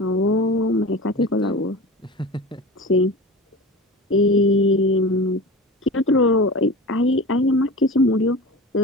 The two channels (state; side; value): normal; both; correlation 0.32